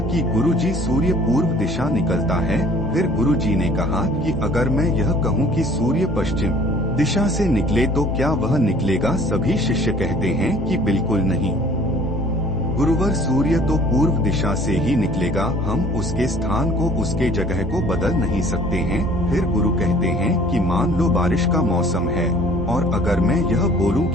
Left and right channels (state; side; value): normal; both; correlation 0.52